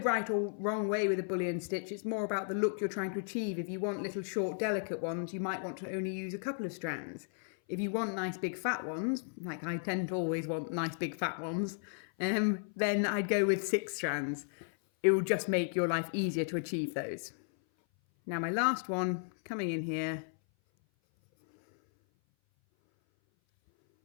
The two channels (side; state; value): right; silent; 55 dB below the other